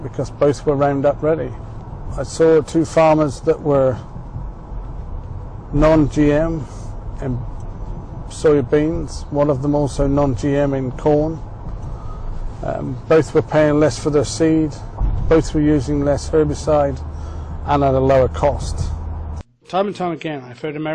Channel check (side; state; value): both; identical; correlation 1.00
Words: because both were Roundup ready. I saw two farmers that were non-GM in soybeans, one of them also non-GM in corn. Both were paying less for their seed, both were using less herbicide and at a lower cost. Time and time again, I've heard